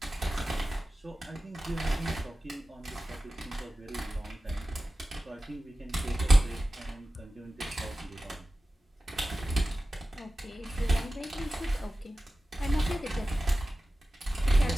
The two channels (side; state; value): both; normal; correlation 0.95